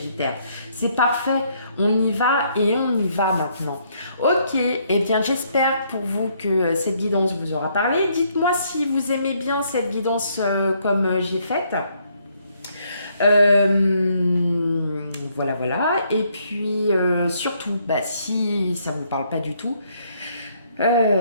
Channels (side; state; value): both; inverted; correlation -0.70